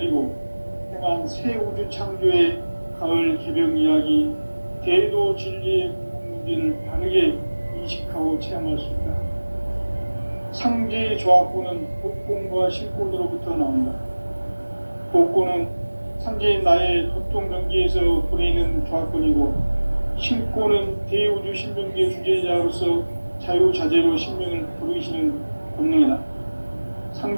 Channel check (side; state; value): both; inverted; correlation -1.00